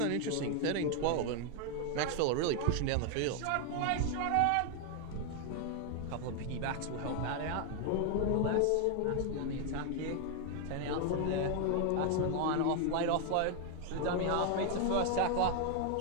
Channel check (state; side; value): different; both; correlation 0.01